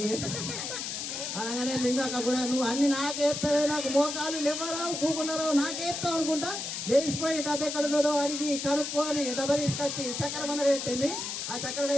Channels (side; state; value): left; noise; hiss, 5 dB below the sound